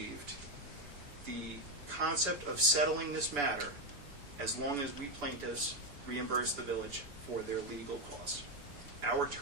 the concept of settling this matter as long as we plaintiffs reimburse the village for their legal costs. Our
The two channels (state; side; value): late; left; 7.0 ms